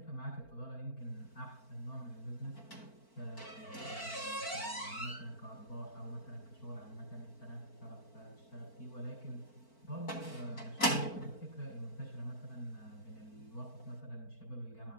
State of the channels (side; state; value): right; late; 4.4 ms